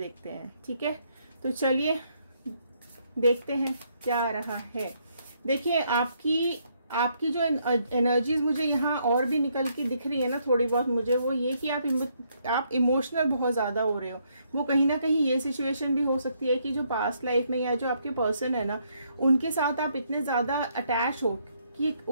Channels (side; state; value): both; inverted; correlation -0.73